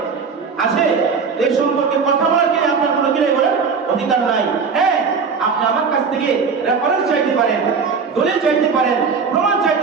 আছে? এই সম্পর্কে কথা বলার কি আপনার কোনো কি নাই বলেন? অধিকার নাই। হ্যাঁ, আপনি আমার কাছ থেকে রেফারেন্স চাইতে পারেন, দলিল চাইতে পারেন, প্রমাণ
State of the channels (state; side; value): quieter; left; 5.4 dB